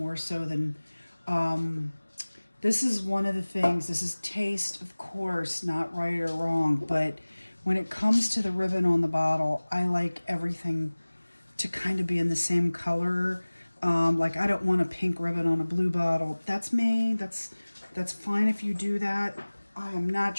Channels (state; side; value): inverted; both; correlation -1.00